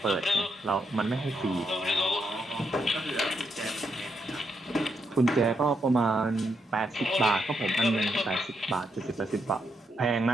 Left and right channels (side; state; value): both; normal; correlation 0.79